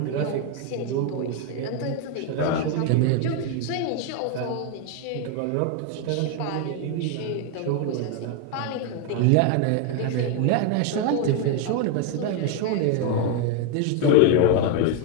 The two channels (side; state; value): both; different; correlation 0.01